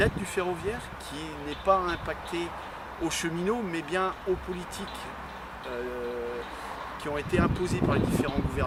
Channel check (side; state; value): both; identical; correlation 1.00